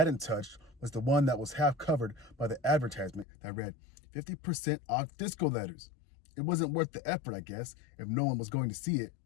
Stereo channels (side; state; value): right; drops out; at 3.2 s